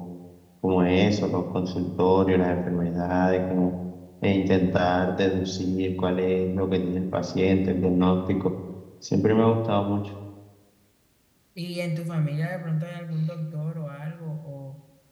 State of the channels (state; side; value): identical; both; correlation 1.00